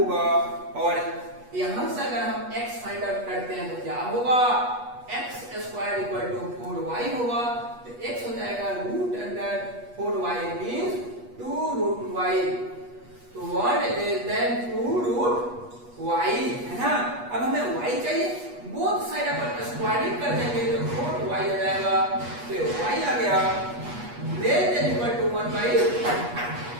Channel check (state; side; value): late; left; 8.3 ms